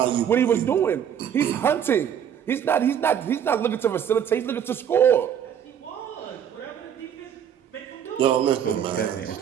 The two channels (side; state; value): left; quieter; 8.9 dB